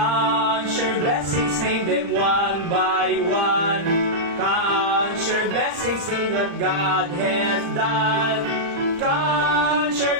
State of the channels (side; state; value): left; late; 35 ms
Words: your blessings, name them one by one. Count your blessings, see what God has done. Count your